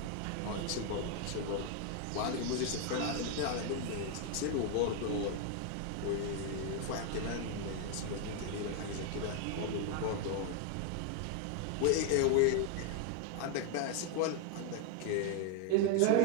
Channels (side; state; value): both; different; correlation 0.01